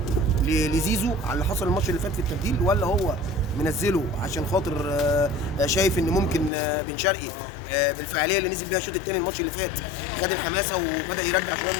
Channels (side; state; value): right; drops out; at 6.5 s